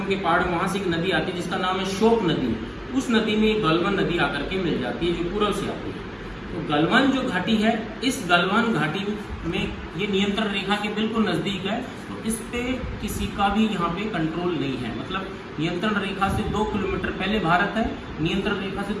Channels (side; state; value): both; identical; correlation 1.00